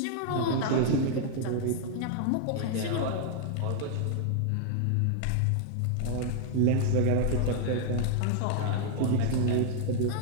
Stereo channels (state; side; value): different; both; correlation 0.00